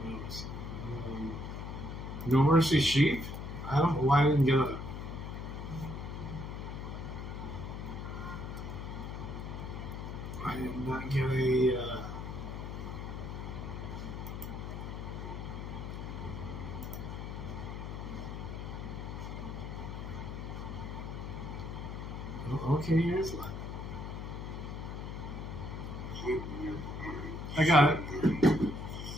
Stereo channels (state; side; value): noise; left; hum, 6 dB below the sound